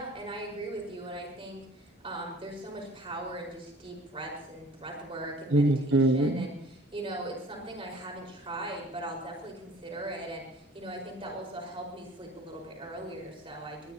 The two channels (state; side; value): normal; both; correlation 0.48